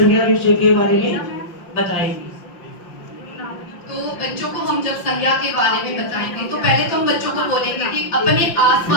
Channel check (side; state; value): right; late; 5.7 ms